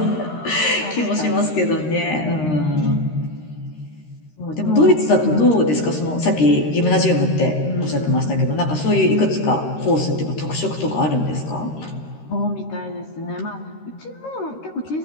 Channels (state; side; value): late; right; 13 ms